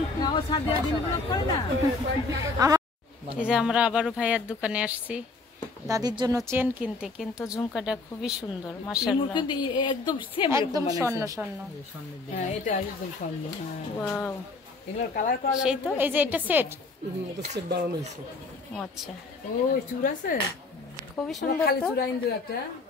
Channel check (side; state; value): right; quieter; 3.7 dB